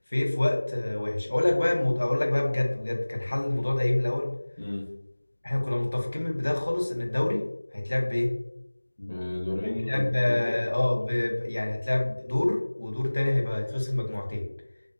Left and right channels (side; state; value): both; inverted; correlation -1.00